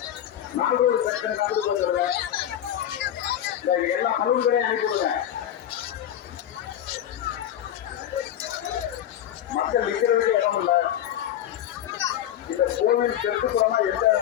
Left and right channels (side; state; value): right; quieter; 11.0 dB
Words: நாகூர் சென்டர் கண்டு கொண்டுருங்க, இந்த எல்லா பழுங்கரையும் அனுப்பிவிடுங்க. மக்கள் நிற்கிறதுக்கு இடம் இல்லை. இந்த கோவில் தெற்குப்புறமா எந்த